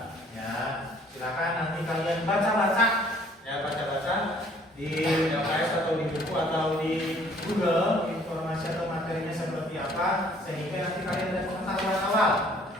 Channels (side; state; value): both; normal; correlation 0.58